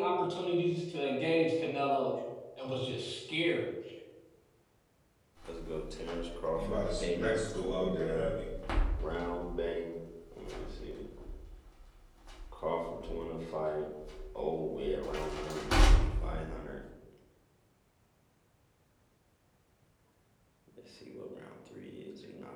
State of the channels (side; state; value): both; identical; correlation 1.00